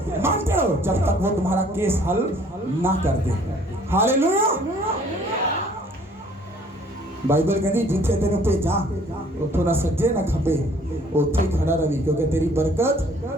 मांगते रहो जब तक वो तुम्हारा केस हल ना कर दे। हालेलुया। बाइबल कहती जिथे तेन भेजा उठो ना सज्जे ना खबे, उथे ही खड़ा रही क्योंकि तेरी बरकत।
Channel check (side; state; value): both; normal; correlation 0.57